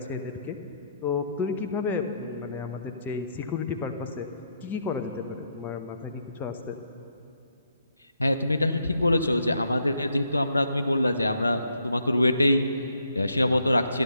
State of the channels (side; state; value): both; inverted; correlation -0.74